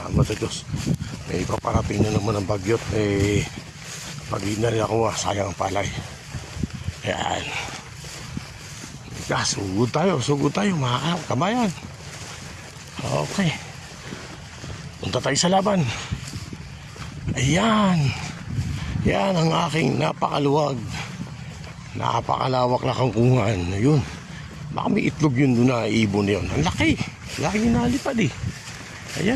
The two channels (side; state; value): both; identical; correlation 1.00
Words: sa Diyos. May paparating na naman ang bagyot. Pag hindi na rin ako, sayang ang palay. Ayan. Sugod tayo mga kabayan. Okay, punta tayo sa laban. Ayan, yan ang aking napakaluwag, napakalawak na kangkungan. Ayun, baka may itlog yun doon na ibon na yun. Ang laki, laki nalipad eh.